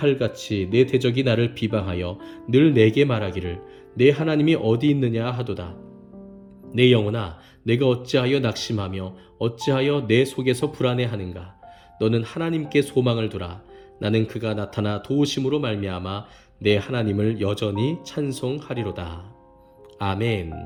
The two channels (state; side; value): identical; both; correlation 1.00